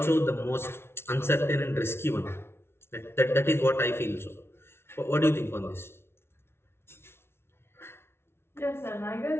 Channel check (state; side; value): late; right; 0.12 ms